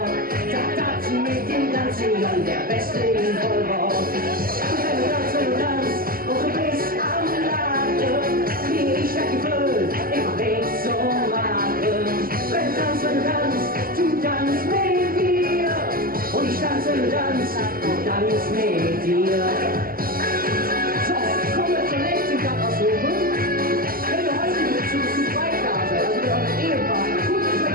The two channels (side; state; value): left; late; 0.42 ms